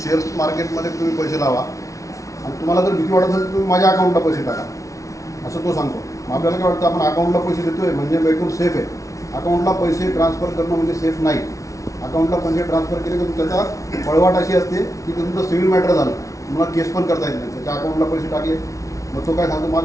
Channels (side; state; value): right; late; 0.16 ms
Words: शेअर्स मार्केटमध्ये तुम्ही पैसे लावा आणि तुम्हाला जर भीती वाटत असेल तर तुम्ही माझ्या अकाउंटला पैसे टाका असं तो सांगतो. मग आपल्याला काय वाटतं आपण अकाउंटला पैसे देतोय म्हणजे एकदम सेफ आहे. अकाउंटला पैसे ट्रान्सफर करणं म्हणजे सेफ नाही. अकाउंटला पैसे ट्रान्सफर केले की त्याचा पळवाट अशी असते की ते तुमचं सिव्हिल मॅटर झालं तुम्हाला केस पण करता येत नाही. त्याच्या अकाउंटला पैसे टाकले मग तो काय सांगतो